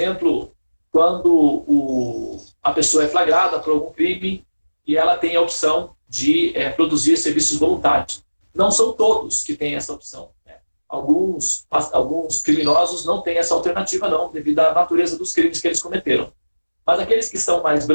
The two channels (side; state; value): both; inverted; correlation -1.00